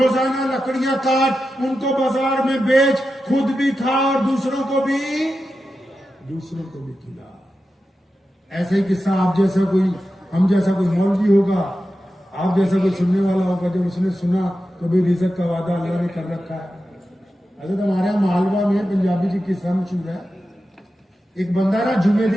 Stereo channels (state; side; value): normal; both; correlation 0.91